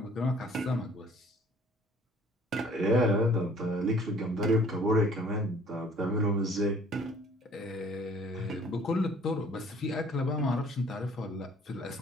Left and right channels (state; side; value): normal; both; correlation 0.55